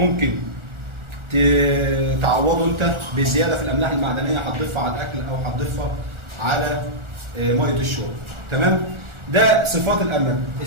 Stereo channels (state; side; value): late; left; 1.4 ms